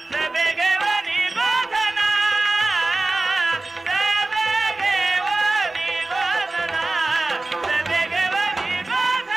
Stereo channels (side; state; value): left; quieter; 3.1 dB